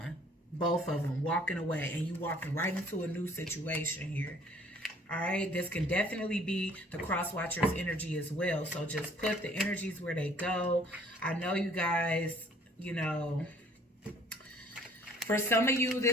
Both of them walking away, and you walking right into a new situation here. All right, this can definitely be the cross watcher's energy as well. So just put the energies where they go. I know you guys, you know, For some of you,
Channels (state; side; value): normal; both; correlation 0.56